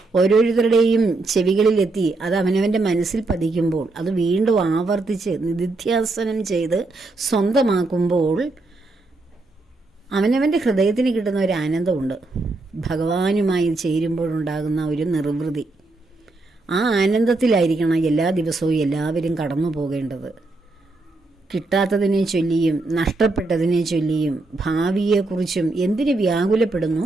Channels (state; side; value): quieter; left; 3.2 dB